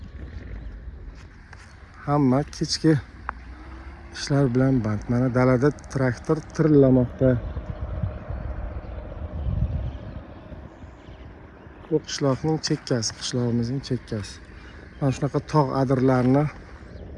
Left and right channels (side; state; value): both; identical; correlation 1.00